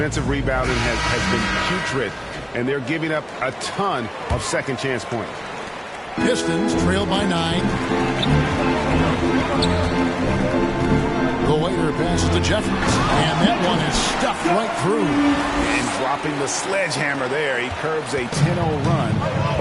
rebounding has been putrid, and they're giving up a ton of second chance points. Pistons trail by 9. The waiter passes to Jeffries, and that one is stuffed right through. And dropping the sledgehammer there, he curbs a 10-0 run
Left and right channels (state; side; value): identical; both; correlation 1.00